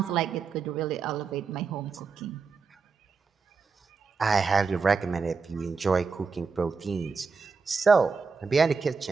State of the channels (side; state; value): left; quieter; 4.9 dB